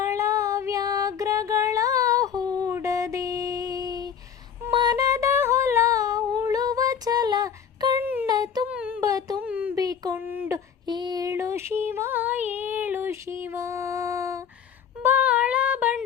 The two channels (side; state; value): right; quieter; 7.9 dB